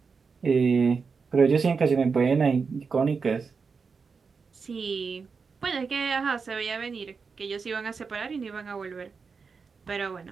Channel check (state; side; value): quieter; left; 5.2 dB